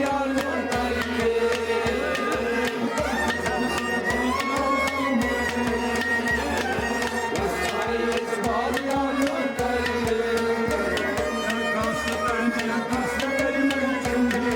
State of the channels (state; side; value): identical; both; correlation 1.00